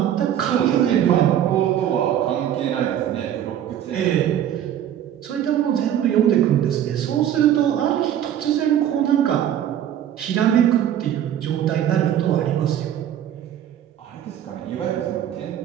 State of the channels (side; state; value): left; quieter; 10.5 dB